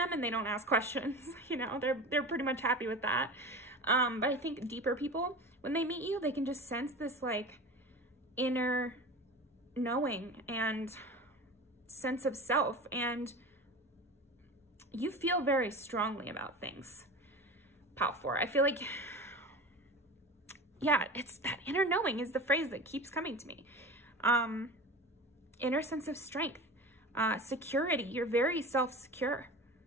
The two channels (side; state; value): both; normal; correlation 0.32